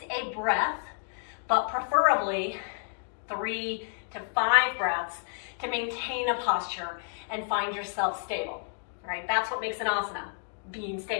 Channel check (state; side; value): silent; right; digital silence